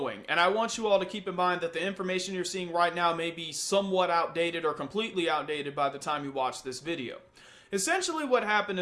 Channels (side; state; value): both; identical; correlation 1.00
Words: and I want you all to keep in mind that the information you're seeing right now may be somewhat outdated or completely outdated by the time you watch this video. Essentially what happened